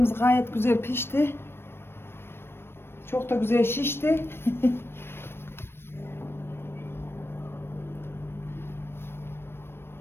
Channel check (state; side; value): late; right; 0.12 ms